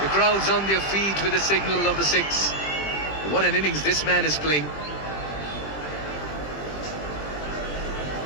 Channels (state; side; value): late; right; 20 ms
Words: The crowd's on their feet with the signal of the 6. What an innings this man is playing.